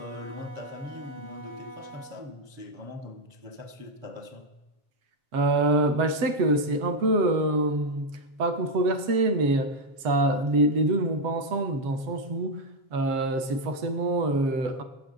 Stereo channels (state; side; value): late; left; 7.5 ms